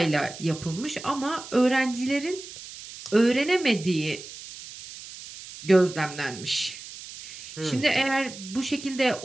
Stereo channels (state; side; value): noise; right; hiss, 14 dB below the sound